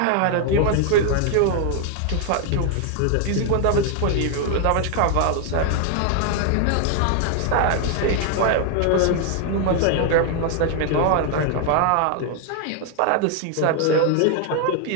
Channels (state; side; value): different; both; correlation 0.00